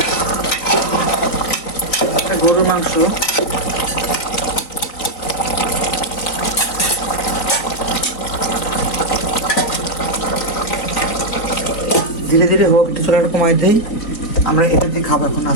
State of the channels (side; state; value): right; late; 3.9 ms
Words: গরুর মাংস ধীরে ধীরে হোক, একটু চলাটা কমাই দেই। আমরা এটা দিয়ে খাবো এখন,